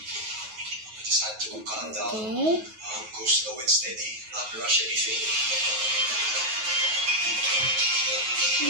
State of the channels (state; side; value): late; left; 9.3 ms